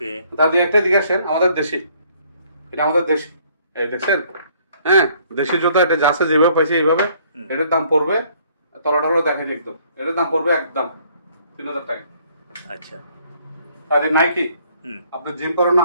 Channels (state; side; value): inverted; both; correlation -0.62